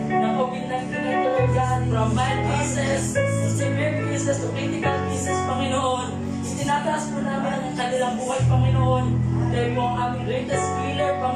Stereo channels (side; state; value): both; identical; correlation 1.00